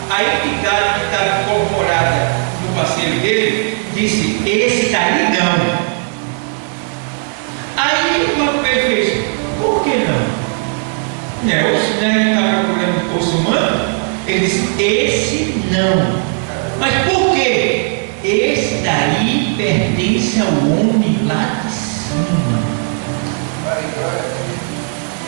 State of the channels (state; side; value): silent; left; 55 dB below the other